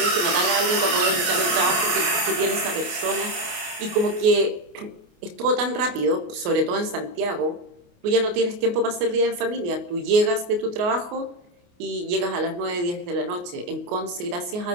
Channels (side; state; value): left; late; 28 ms